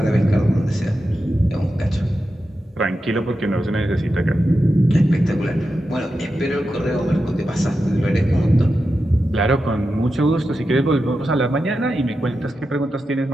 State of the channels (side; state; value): both; normal; correlation 0.90